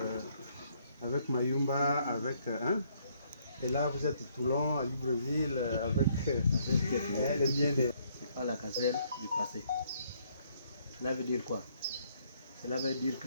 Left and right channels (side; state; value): both; inverted; correlation -0.68